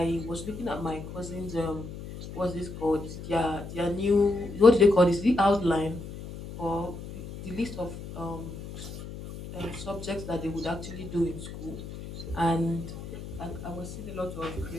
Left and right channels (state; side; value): noise; left; hum, 11 dB below the sound